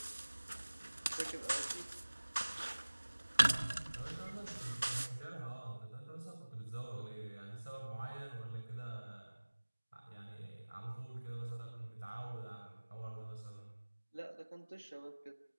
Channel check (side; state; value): both; inverted; correlation -1.00